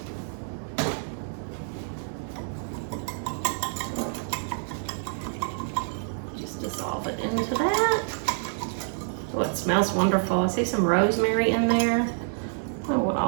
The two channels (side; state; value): left; silent; 60 dB below the other